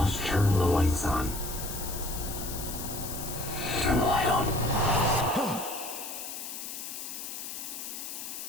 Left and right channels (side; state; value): left; noise; hiss, 7 dB below the sound